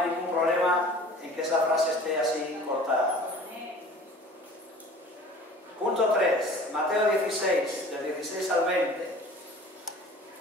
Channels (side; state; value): both; normal; correlation 0.45